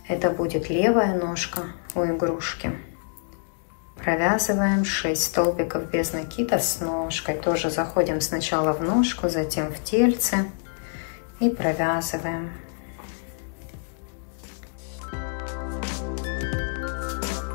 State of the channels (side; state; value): right; silent; 61 dB below the other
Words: Это будет левая ножка у игрушки. Провязываем 6 столбиков без накида с ножкой. Тоже заходим сначала в ножку, затем в тельце и провязываем.